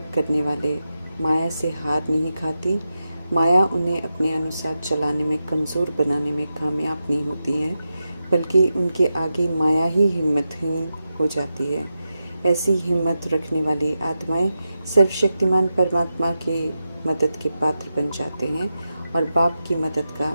करने वाले माया से हार नहीं खाती। माया उन्हें अपने अनुसार चलाने में, कमज़ोर बनाने में कामयाब नहीं होती है, बल्कि उनके आगे माया ही हिम्मतहीन हो जाती है। ऐसी हिम्मत रखने वाली आत्माएं सर्वशक्तिमान परमात्मा के मदद के पात्र बन जाते हैं और बाप की मदद का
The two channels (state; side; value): inverted; both; correlation -0.89